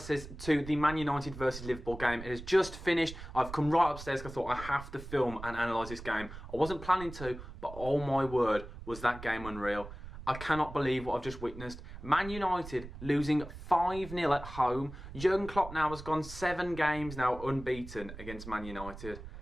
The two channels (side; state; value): right; noise; rumble, 12 dB below the sound